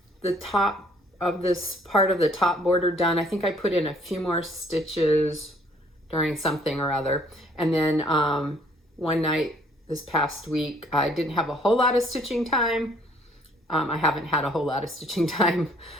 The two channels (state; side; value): normal; both; correlation 0.60